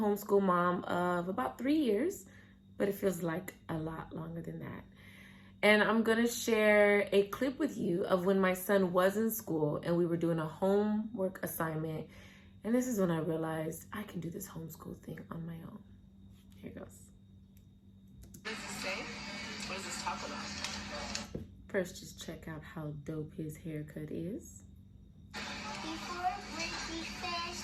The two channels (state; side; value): identical; both; correlation 1.00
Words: mom of about 3 years, but it feels like a lot longer than that. And I'm gonna share a clip with you of when my son was in school and we were doing a homework assignment. And this is when I realized I can do this homeschool thing on my own. Here goes. What does this say? What does this talk about? First, just check out how dope his haircut is. Before we